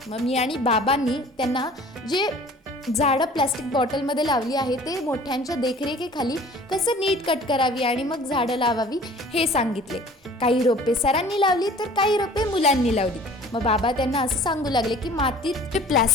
मग मी आणि बाबांनी त्यांना जे झाडं प्लॅस्टिक बॉटलमध्ये लावली आहे ते मोठ्यांच्या देखरेखीखाली कसं नीट कट करावी आणि मग झाडं लावावी हे सांगितले. काही रोपे सरांनी लावली तर काही रोपे मुलांनी लावली. मग बाबा त्यांना असं सांगू लागले की मातीत जे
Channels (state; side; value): normal; both; correlation 0.48